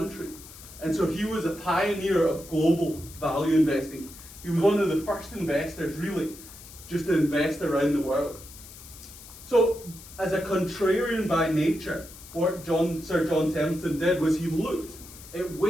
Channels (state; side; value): noise; left; hiss, 17 dB below the sound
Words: And so he was a pioneer of global value investing. He was one of the first investors, really, just to invest around the world. So, as a contrarian by nature, what Sir John Templeton did was he looked at